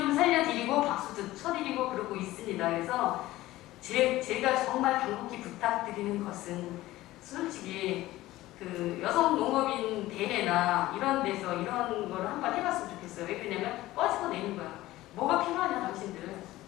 살려드리고 박수도 쳐드리고 그러고 있습니다. 그래서 제가 정말 간곡히 부탁드리는 것은 솔직히 여성 농업인 대회나 이런 데서 이런 거를 한번 해봤으면 좋겠어요. 왜 그러냐면 꺼지고 내는 거야. 뭐가 필요하냐 당신들.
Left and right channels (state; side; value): quieter; right; 16.8 dB